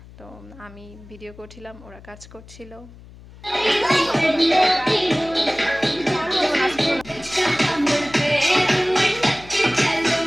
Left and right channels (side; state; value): left; noise; hum, 20 dB below the sound